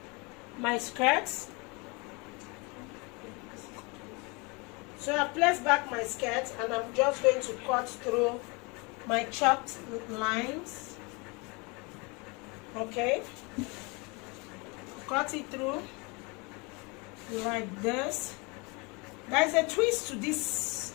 my skirts. So I'll place back my skirt, and I'm just going to cut through my chopped lines. Okay, cut it through like this. There's a twist to this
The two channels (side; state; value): right; quieter; 28.8 dB